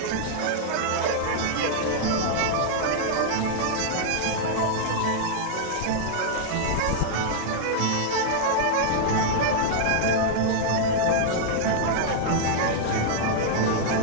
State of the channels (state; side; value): different; both; correlation -0.01